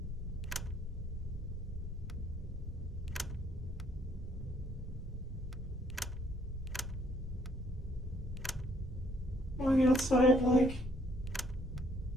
Going outside like...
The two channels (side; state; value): both; normal; correlation 0.67